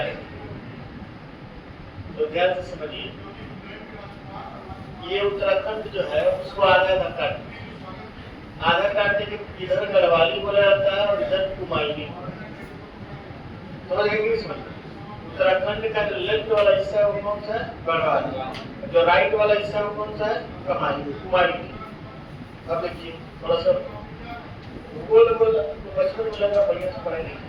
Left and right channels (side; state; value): both; identical; correlation 1.00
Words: तो ध्यान से समझिए, ये उत्तराखंड जो है उसको आधा काटने के इधर गढ़वाली बोला जाता है और इधर कुमायूनी। समझ गए? समझ उत्तराखंड का जो लेफ्ट वाला हिस्सा है वो कौन सा है? गढ़वाली। जो राइट वाला हिस्सा है वो कौन सा है? कुमायूनी। अब देखिए थोड़ा सा बचपन में लगा बढ़िया से पढ़ाई नहीं,